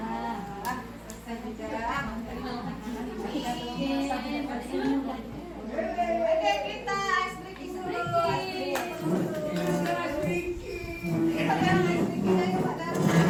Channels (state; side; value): identical; both; correlation 1.00